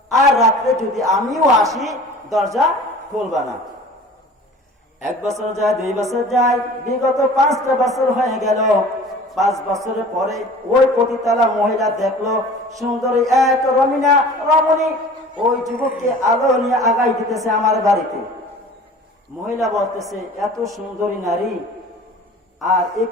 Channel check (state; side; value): normal; both; correlation 0.44